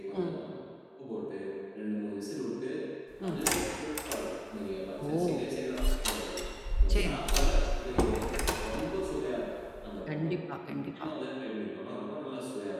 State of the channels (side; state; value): both; identical; correlation 1.00